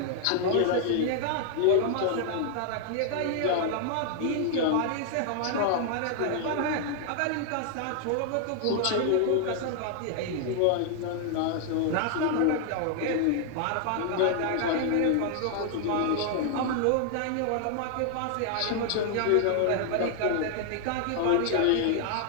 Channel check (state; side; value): different; both; correlation 0.00